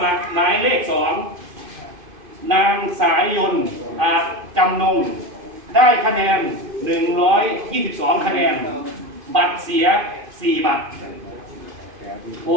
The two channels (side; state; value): left; late; 2.5 ms